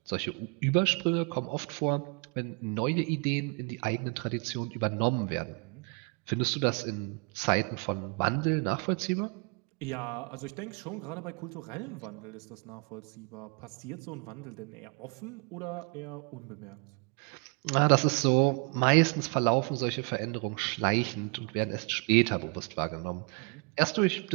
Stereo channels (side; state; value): left; quieter; 35.0 dB